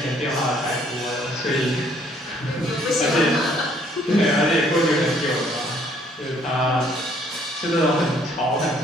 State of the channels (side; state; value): both; normal; correlation 0.63